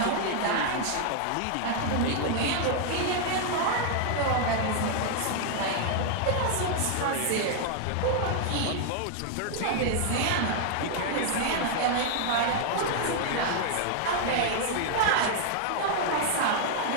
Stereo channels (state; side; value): different; both; correlation 0.00